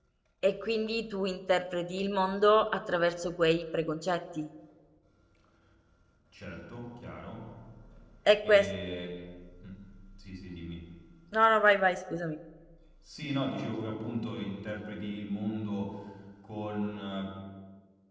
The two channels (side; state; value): both; identical; correlation 1.00